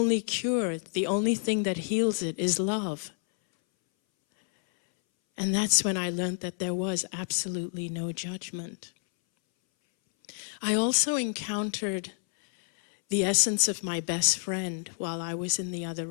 cure, the only thing that heals it is love. And that's when I learned that there was absolutely no judgment. I also encountered the essence of my best friend while I was in the other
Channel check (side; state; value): right; silent; 59 dB below the other